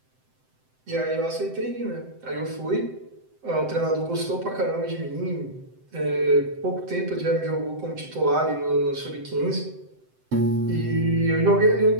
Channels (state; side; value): late; left; 7.8 ms